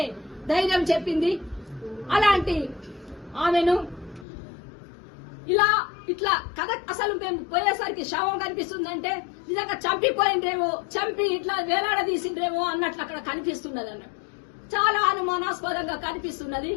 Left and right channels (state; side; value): drops out; right; at 4.2 s